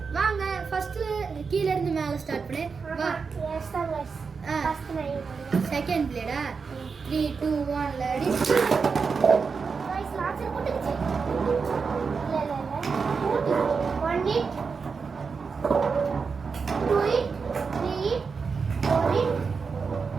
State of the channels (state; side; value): quieter; left; 5.2 dB